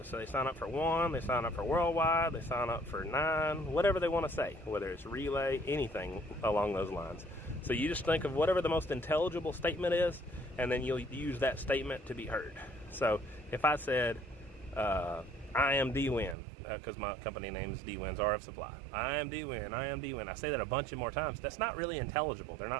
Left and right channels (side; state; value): left; drops out; at 16.4 s